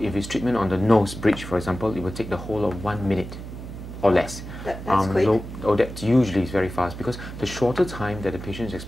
it's treatment on the nose bridge, for example, it will take the whole of 1 minute or less. That's quick. That usually is very fast, because the shorter time that the patient is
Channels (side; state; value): right; noise; hum, 10 dB below the sound